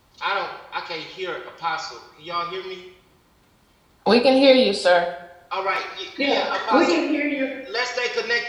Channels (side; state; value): both; identical; correlation 1.00